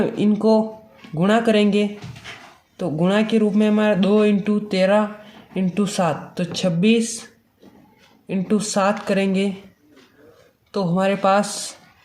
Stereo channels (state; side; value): identical; both; correlation 1.00